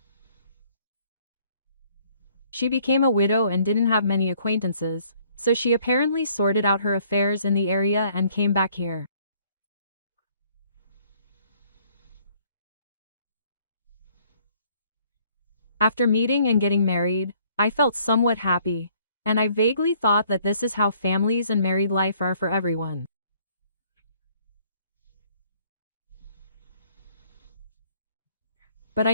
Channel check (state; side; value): inverted; both; correlation -0.62